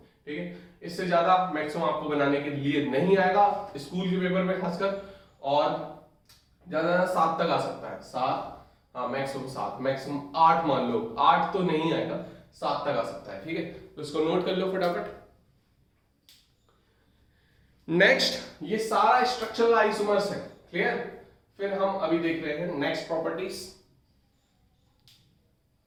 ठीक है। इससे ज्यादा मैक्सिमम आपको बनाने के लिए नहीं आएगा स्कूल के पेपर में खासकर, और ज्यादा 7 तक आ सकता है, 7, हाँ मैक्सिमम 7, मैक्सिमम 8 मान लो, 8 तो नहीं आएगा, 7 तक आ सकता है, ठीक है। तो इसको नोट कर लो फटाफट। नेक्स्ट, ये सारा स्ट्रक्चरल आइसोमर्स है, क्लियर। फिर हम अभी देख रहे हैं नेक्स्ट प्रॉपर्टीज।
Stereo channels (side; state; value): both; identical; correlation 1.00